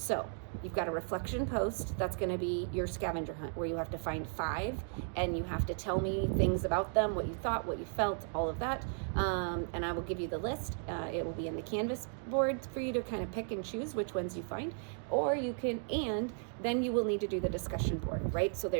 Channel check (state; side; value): silent; left; 54 dB below the other